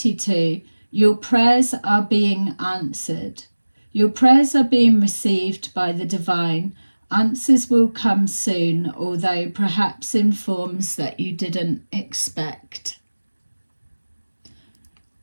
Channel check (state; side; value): inverted; both; correlation -1.00